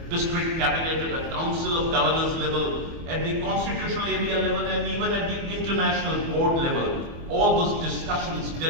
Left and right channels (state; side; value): late; left; 24 ms